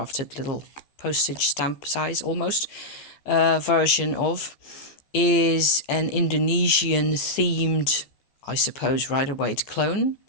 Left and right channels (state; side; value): late; right; 14 ms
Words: little postage stamp size almost version of, is an Indonesian themed, I suppose, Rider-Waite clone,